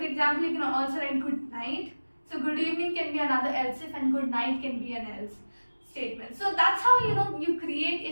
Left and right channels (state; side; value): inverted; both; correlation -1.00